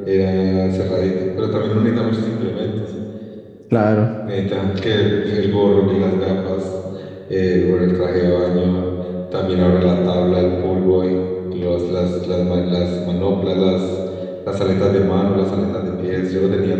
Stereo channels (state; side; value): identical; both; correlation 1.00